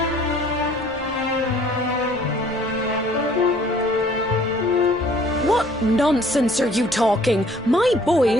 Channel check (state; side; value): normal; both; correlation 0.56